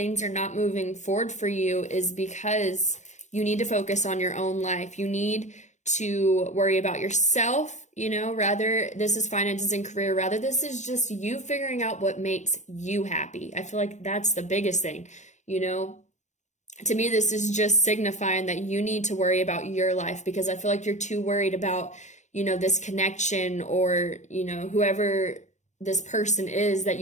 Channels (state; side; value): late; right; 0.34 ms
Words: are not moving forward for you is because you need to focus on your own life. You need to worry about yourself, you know, rather this is finances and career, rather this is just you figuring out what makes you happy. I feel like that's the biggest thing, you know. To me, this is just signifying that you need to worry about your life, because I feel like you're too worried about, you know, this connection, or, you know, whoever this person is that